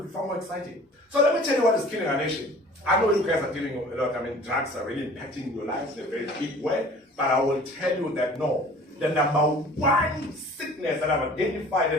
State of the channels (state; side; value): normal; both; correlation 0.47